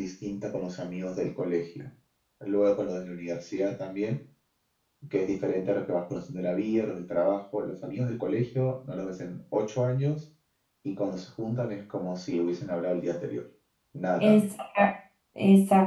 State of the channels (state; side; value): identical; both; correlation 1.00